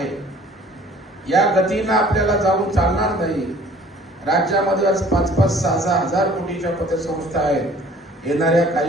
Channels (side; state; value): both; normal; correlation 0.52